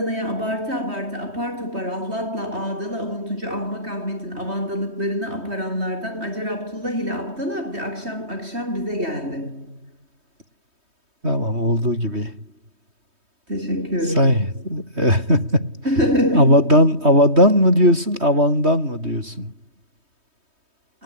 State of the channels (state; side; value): late; left; 3.2 ms